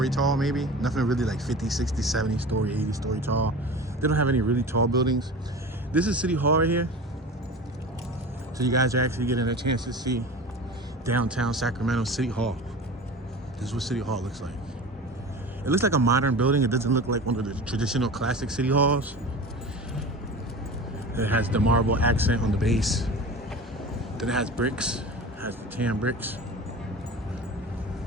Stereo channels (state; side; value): normal; both; correlation 0.34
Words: tall maybe. Nothing really like 50, 60, 70-story, 80-story tall. They don't have any really tall buildings. This is City Hall right here. So you guys are actually getting a chance to see downtown Sacramento City Hall. This is what City Hall looks like. It looks like a modern building. It doesn't look like one of the traditional classic city halls. It has the marble accent on the base. Then it has bricks. It has the tan bricks.